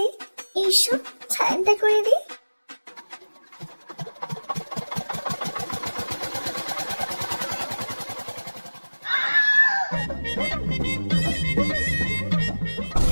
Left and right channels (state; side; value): inverted; both; correlation -1.00